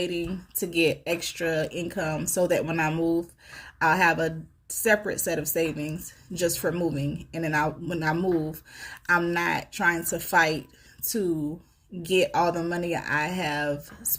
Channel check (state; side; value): identical; both; correlation 1.00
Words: to get extra income so that when I move, I'll have a separate set of savings just for moving. And then when I move, I'm not trying to fight to get all the money I have